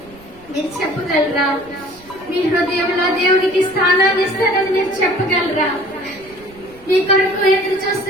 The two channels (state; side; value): noise; right; rumble, 24 dB below the sound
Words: మీరు చెప్పగలరా? మీ హృదయంలో దేవునికి స్థానాన్ని ఇస్తారని మీరు చెప్పగలరా? మీ కొరకు ఎదురు